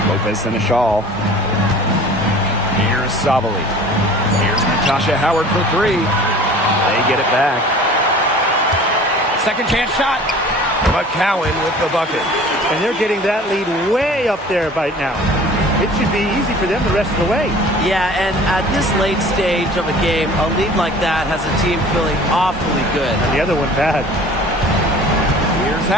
Lopez Seneschal. Here's Sabali. Here's Natasha Howard for 3. They get it back. Second chance shot. McCowan with the bucket. And they're getting that lead way up there right now. It should be easy for them the rest of the way. Yeah, and at this late stage of a game, a lead like that has a team feeling awfully good. And the other one bad. Here's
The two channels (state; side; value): normal; both; correlation 0.45